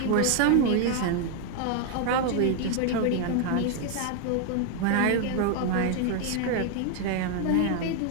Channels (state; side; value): different; both; correlation 0.00